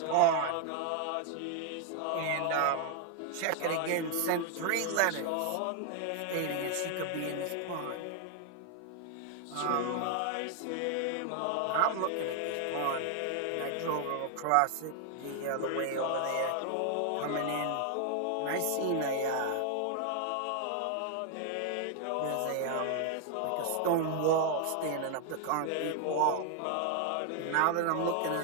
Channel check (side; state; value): both; different; correlation 0.00